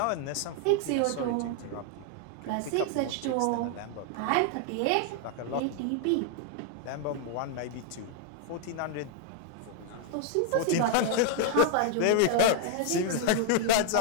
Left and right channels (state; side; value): different; both; correlation 0.00